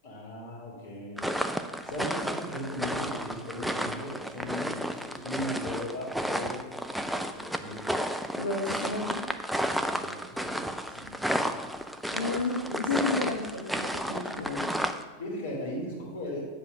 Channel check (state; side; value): normal; both; correlation 0.47